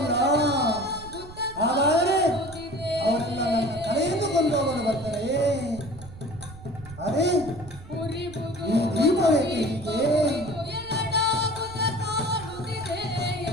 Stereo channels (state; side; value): noise; right; rumble, 16 dB below the sound